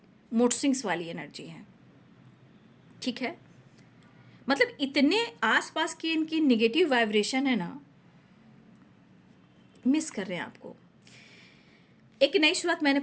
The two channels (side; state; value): both; identical; correlation 1.00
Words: मूड स्विंग्स वाली एनर्जी है, ठीक है। मतलब इतने आसपास की इनकी नेगेटिव वाइब्रेशन है ना, मिस कर रहे हैं आपको। एक नई शुरुआत, मैंने